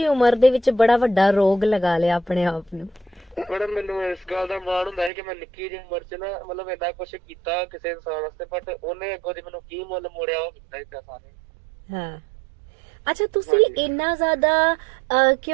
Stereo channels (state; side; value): drops out; left; at 5.1 s